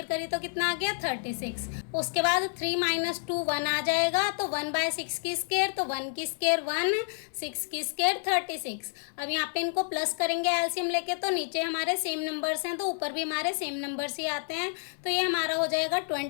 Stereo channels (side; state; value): right; silent; 55 dB below the other